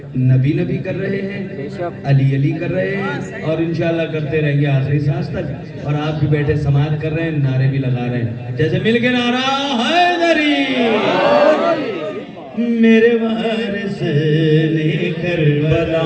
نبی نبی کر رہے ہیں, علی علی کر رہے ہیں, اور انشاءاللہ کرتے رہیں گے آخری سانس تک. اور آپ بھی بیٹھے سماعت کر رہے ہیں, نعرے بھی لگا رہے ہیں. جیسے مل کے نعرہ حیدری, میرے وارث نے کربلا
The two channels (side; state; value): both; identical; correlation 1.00